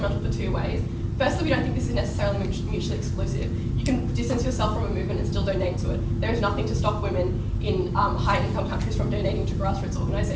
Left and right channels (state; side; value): identical; both; correlation 1.00